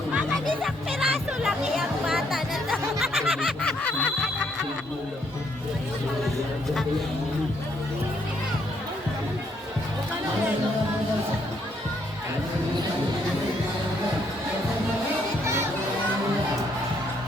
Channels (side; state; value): both; normal; correlation 0.71